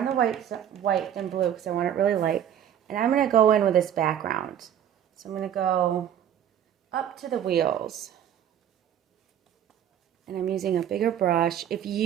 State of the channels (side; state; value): left; quieter; 9.9 dB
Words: the white than blue because I want it really light. And I'm going to go in with this background. So I'm going to go up to the wheels. And I'm using a bigger brush. If